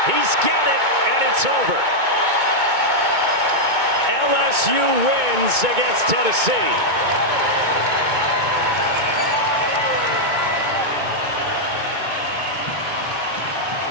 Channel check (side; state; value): left; late; 2.2 ms